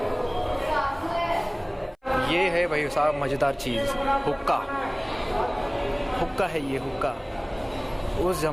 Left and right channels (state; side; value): identical; both; correlation 1.00